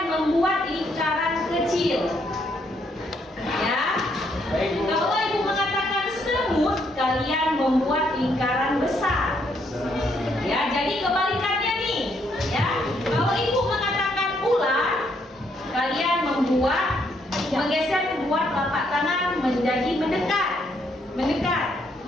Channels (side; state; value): both; normal; correlation 0.72